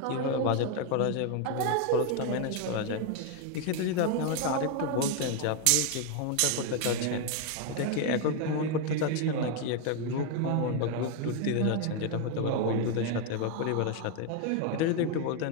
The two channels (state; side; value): different; both; correlation 0.01